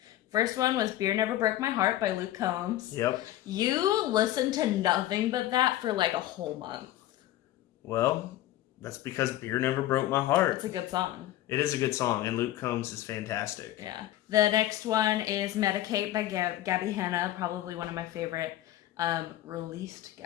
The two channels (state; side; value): quieter; right; 14.1 dB